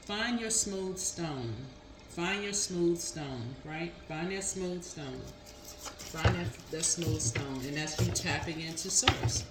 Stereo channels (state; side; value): identical; both; correlation 1.00